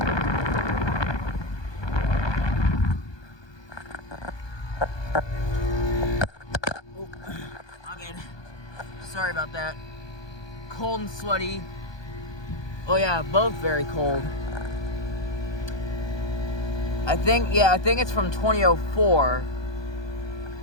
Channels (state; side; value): late; right; 1.2 ms